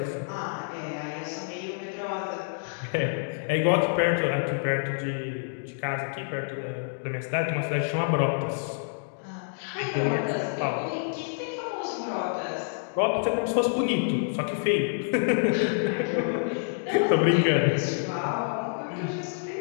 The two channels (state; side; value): silent; right; digital silence